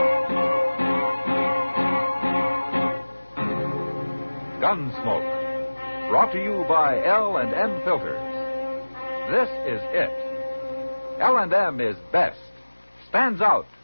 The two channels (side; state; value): both; inverted; correlation -1.00